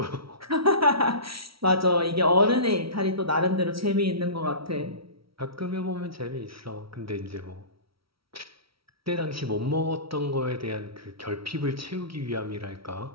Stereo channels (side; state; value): left; late; 0.75 ms